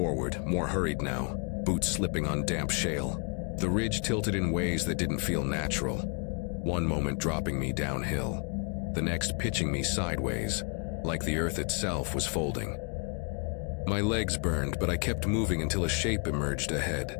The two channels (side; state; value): right; quieter; 36.6 dB